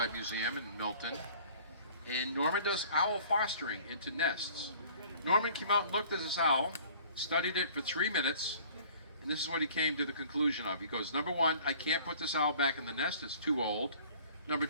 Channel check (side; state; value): both; inverted; correlation -0.50